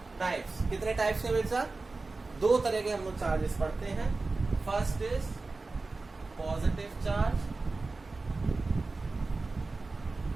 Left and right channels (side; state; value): left; quieter; 3.6 dB